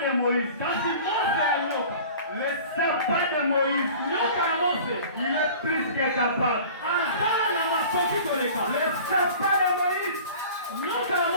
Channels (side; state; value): both; inverted; correlation -0.42